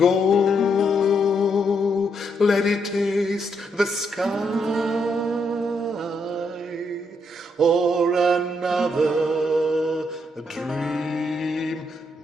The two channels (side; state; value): both; normal; correlation 0.77